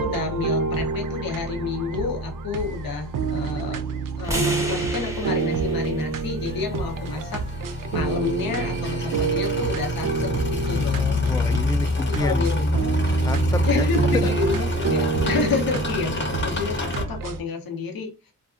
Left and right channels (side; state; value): both; normal; correlation 0.40